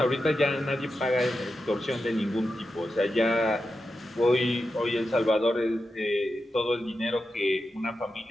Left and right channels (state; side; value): normal; both; correlation 0.89